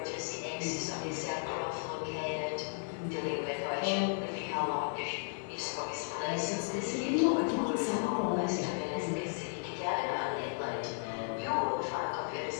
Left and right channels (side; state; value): right; silent; digital silence